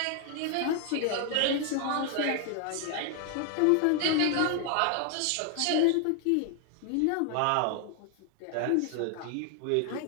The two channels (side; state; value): both; different; correlation 0.00